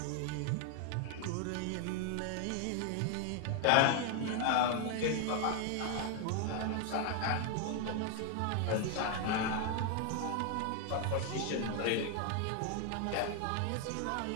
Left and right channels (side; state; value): both; different; correlation 0.00